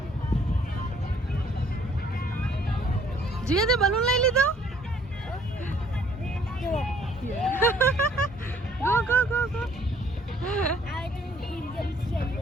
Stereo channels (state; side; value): normal; both; correlation 0.61